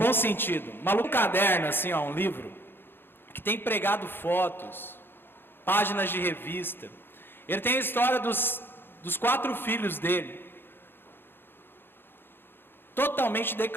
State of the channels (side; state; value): right; late; 0.10 ms